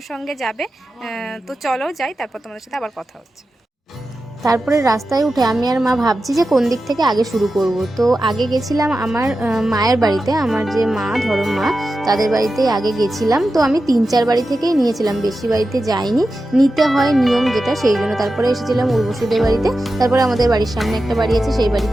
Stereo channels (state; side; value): normal; both; correlation 0.92